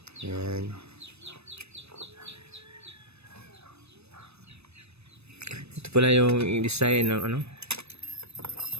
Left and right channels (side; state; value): left; late; 0.79 ms